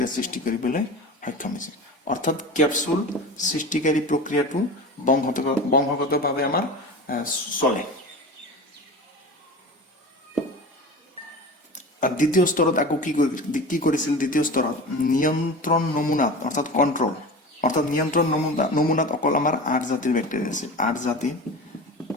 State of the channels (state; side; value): normal; both; correlation 0.32